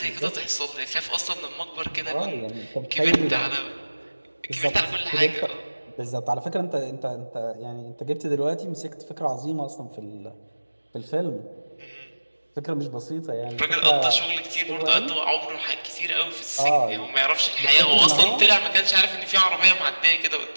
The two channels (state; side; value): inverted; both; correlation -1.00